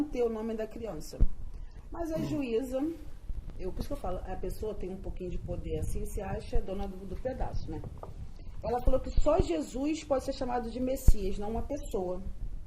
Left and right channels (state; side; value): identical; both; correlation 1.00